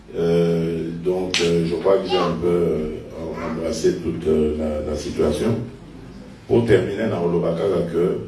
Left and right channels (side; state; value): both; identical; correlation 1.00